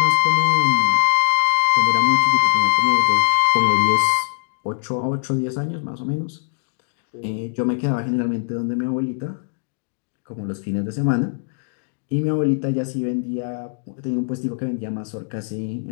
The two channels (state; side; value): silent; right; digital silence